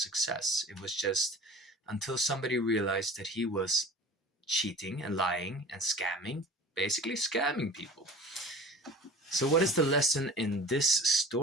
It was just until somebody realized that he was cheating and lying and scamming, basically scamming people. So, what is the lesson in this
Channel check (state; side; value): normal; both; correlation 0.40